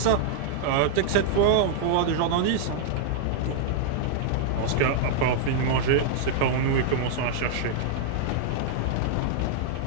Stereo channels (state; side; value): different; both; correlation -0.01